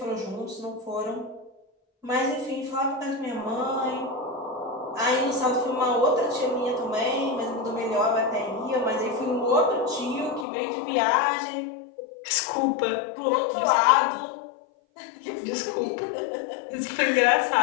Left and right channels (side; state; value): right; drops out; at 10.5 s